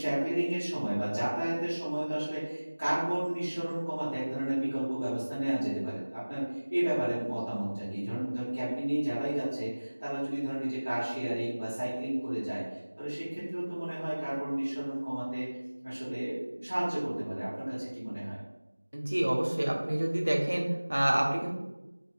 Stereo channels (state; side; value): inverted; both; correlation -1.00